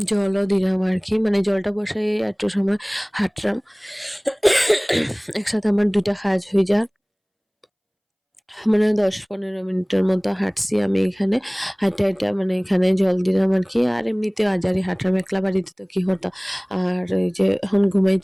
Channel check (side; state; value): both; identical; correlation 1.00